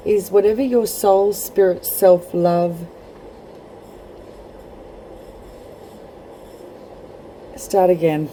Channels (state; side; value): identical; both; correlation 1.00